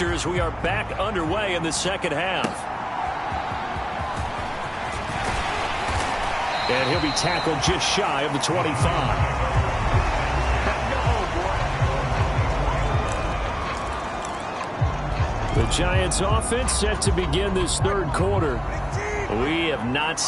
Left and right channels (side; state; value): both; identical; correlation 1.00